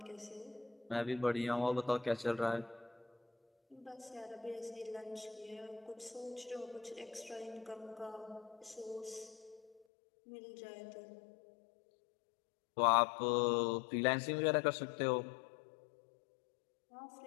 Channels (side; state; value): right; drops out; at 9.8 s